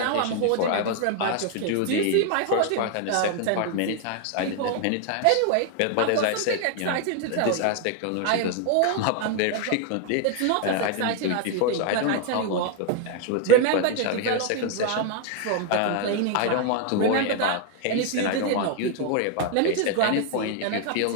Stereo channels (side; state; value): both; different; correlation 0.00